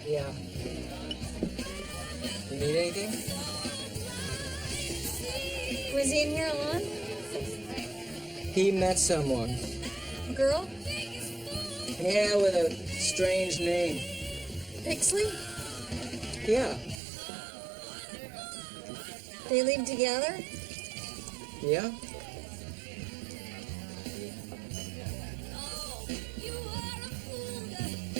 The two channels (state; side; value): drops out; left; at 17.0 s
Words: Yeah. You need anything? Was he in here alone? He met someone. A girl? Yeah, with a strange name. Bixley? Yeah. They live together? Yeah?